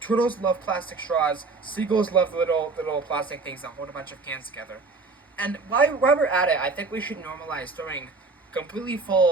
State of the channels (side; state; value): left; quieter; 4.0 dB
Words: Turtles love plastic straws. Seagulls love little plastic things that hold a bunch of cans together. And while we're at it, I think we should normalize throwing completely